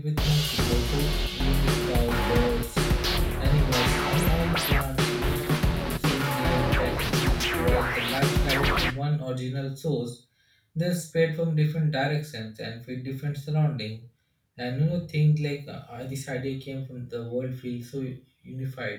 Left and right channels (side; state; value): both; identical; correlation 1.00